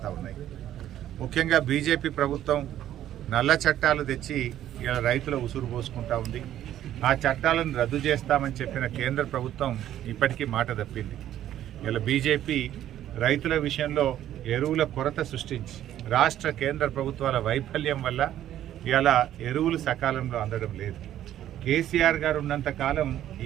ఉన్నాయి. ముఖ్యంగా బీజేపీ ప్రభుత్వం నల్ల చట్టాలు తెచ్చి ఇలా రైతుల ఉసురు పోసుకుంటా ఉంది. ఆ చట్టాలను రద్దు చేస్తామని చెప్పిన కేంద్ర ప్రభుత్వం ఇప్పటికీ మాట తప్పింది. ఇలా బీజేపీ రైతుల విషయంలో ఎరువుల కొరత సృష్టించి రాష్ట్ర కేంద్ర ప్రభుత్వాల వైఫల్యం వల్ల ఇలా ఎరువులు సకాలంలో అందడం లేదు. కేసీఆర్ గారు ఉన్నంత కాలం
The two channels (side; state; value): left; quieter; 11.9 dB